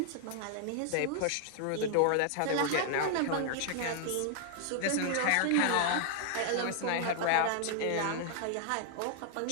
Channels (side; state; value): both; different; correlation 0.00